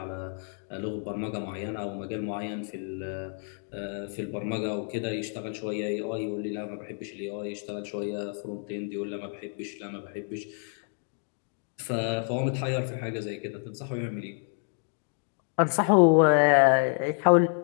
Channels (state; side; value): silent; right; 55 dB below the other